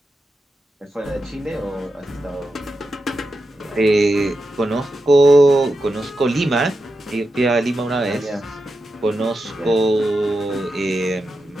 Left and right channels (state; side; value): normal; both; correlation 0.89